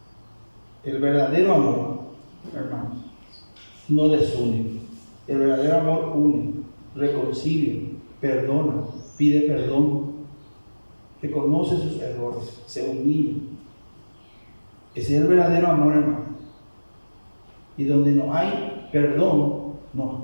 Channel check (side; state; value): both; inverted; correlation -1.00